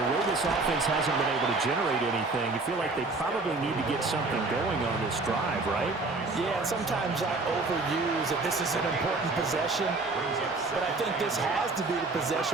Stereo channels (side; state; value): left; quieter; 3.5 dB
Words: way this offense hasn't been able to generate anything, you feel like they probably need to get something going on this drive, right? Yeah, and sometimes I overuse that this is an important possession, but I think this has to be the